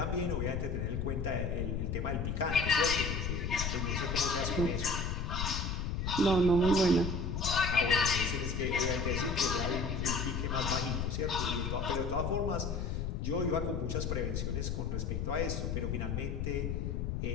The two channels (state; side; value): noise; left; rumble, 1 dB below the sound